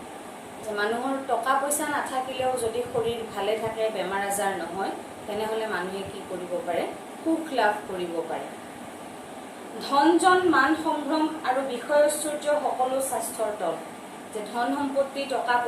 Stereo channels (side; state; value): both; identical; correlation 1.00